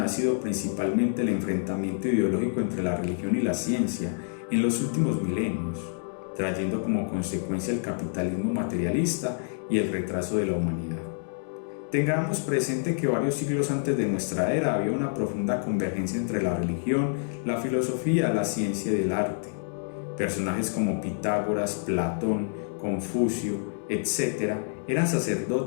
ha sido principalmente el enfrentamiento ideológico entre la religión y la ciencia en los últimos milenios, trayendo como consecuencia el capitalismo materialista y el retraso de la humanidad. Tengamos presente que varios siglos antes de nuestra era había una profunda convergencia entre la religión, la filosofía, la ciencia y el arte. Personajes como Pitágoras, Platón, Confucio, etc., eran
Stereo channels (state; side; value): silent; right; digital silence